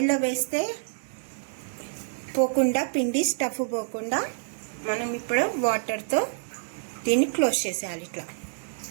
వేస్తే పోకుండా, పిండి స్టఫ్ పోకుండా మనం ఇప్పుడు వాటర్తో దీన్ని క్లోజ్ చేసేయాలి ఇట్లా.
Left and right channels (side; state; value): left; silent; 56 dB below the other